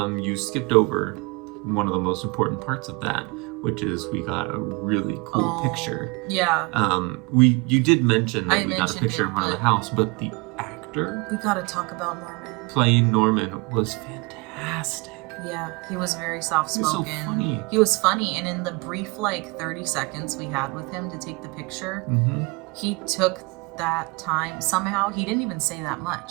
You skipped over one of the most important parts of that, which is we got a really cool picture. Yeah. You did mention that we got a mentioned picture it, in front of the house, but the actor We gotta talk about Norman. playing Norman was fantastic. Yeah, he was very soft-spoken. He was so funny. He was funny, and in the brief, 30 seconds we had with him to take the picture, he took that time. Somehow, he didn't even say that much,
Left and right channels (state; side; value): quieter; left; 27.2 dB